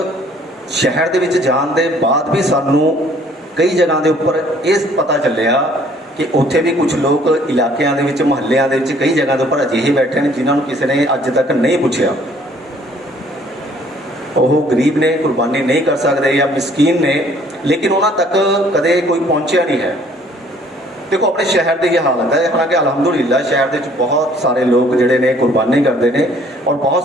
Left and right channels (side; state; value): both; normal; correlation 0.59